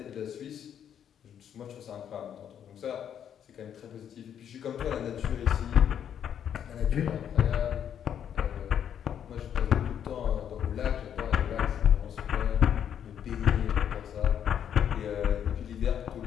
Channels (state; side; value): quieter; right; 9.1 dB